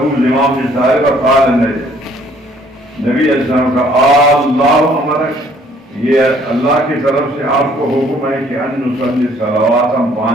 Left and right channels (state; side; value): normal; both; correlation 0.61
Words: زمام بن ثعلبہ قال نبی علیہ السلام کا اللہ امرک، یہ اللہ کی طرف سے آپ کو حکم ہے کہ ان نصلی صلوات، ہم